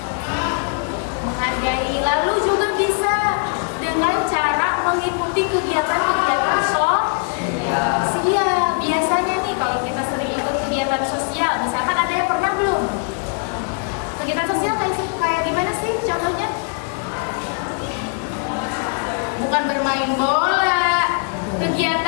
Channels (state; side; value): quieter; right; 39.7 dB